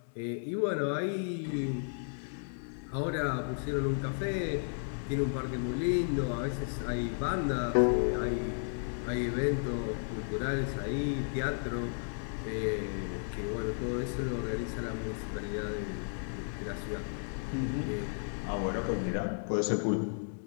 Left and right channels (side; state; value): right; silent; digital silence